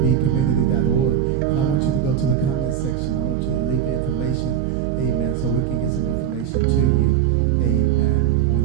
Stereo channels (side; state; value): left; quieter; 9.9 dB